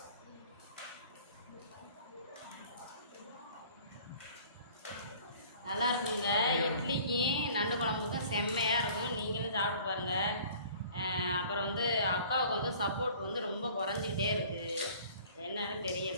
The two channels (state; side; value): inverted; both; correlation -0.50